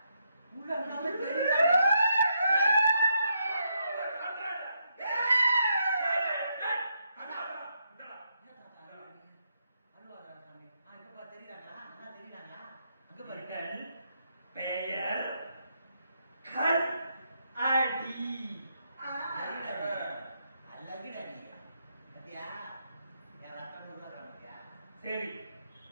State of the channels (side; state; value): both; inverted; correlation -0.79